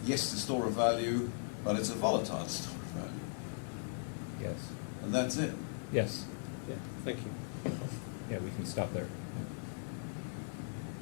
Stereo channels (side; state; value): right; silent; digital silence